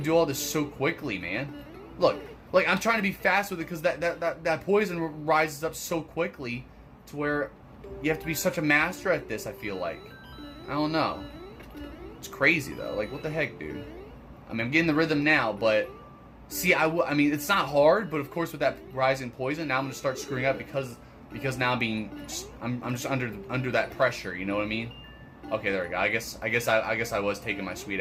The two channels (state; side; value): identical; both; correlation 1.00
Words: do all this so quickly, man. Look, like, I'm trying to be fast with it because that poison rises up so quickly to where you have to be such a master at this, I feel like. I don't know. It's crazy, though. Like, what the heck, dude? I mean, I'm getting the rhythm now, but... See, I mean, it's not hard, but of course with that rising poison, now I'm going to start screwing up because now I'm just under that pressure, you know what I mean? Okay, there we go. I guess I was taking my